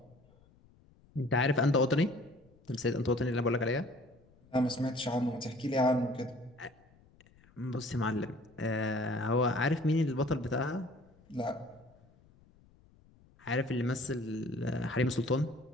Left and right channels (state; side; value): noise; left; rumble, 29 dB below the sound